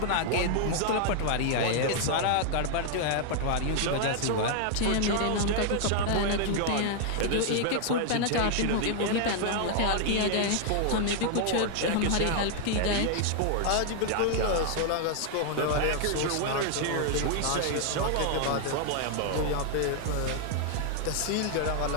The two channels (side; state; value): both; different; correlation 0.00